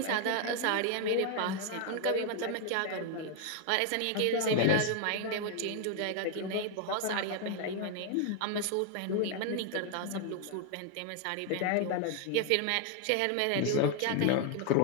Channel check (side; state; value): both; different; correlation 0.00